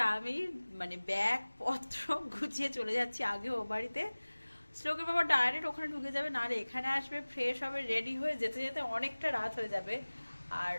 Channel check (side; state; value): both; inverted; correlation -1.00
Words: আমি মানে ব্যাগ পত্র গুছিয়ে চলে যাচ্ছি আগে ও বাড়িতে। শ্লোকের বাবা ডাইরেক্ট ওখানে ঢুকে যাবে, না রে এখানে আসবে, ফ্রেশ হবে, রেডি হয়ে যেতে যেতে অনেকটা রাত হয়ে যাবে। আর